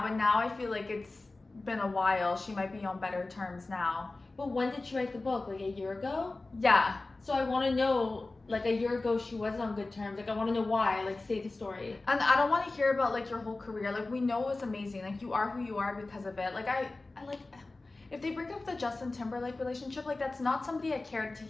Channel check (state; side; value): quieter; right; 3.2 dB